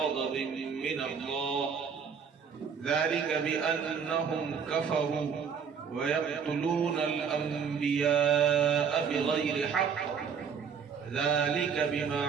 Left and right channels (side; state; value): left; quieter; 6.6 dB